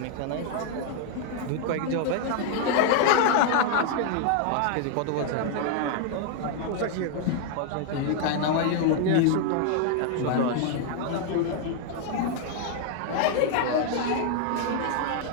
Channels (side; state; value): both; different; correlation 0.00